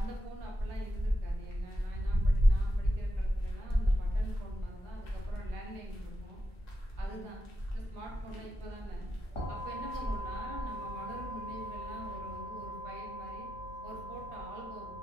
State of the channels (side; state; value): both; normal; correlation 0.87